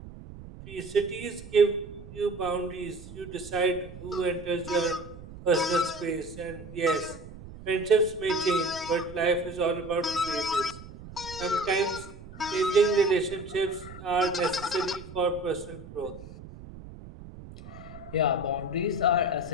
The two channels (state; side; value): noise; right; rumble, 15 dB below the sound